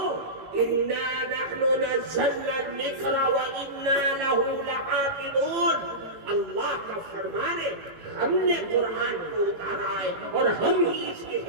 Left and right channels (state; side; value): late; left; 18 ms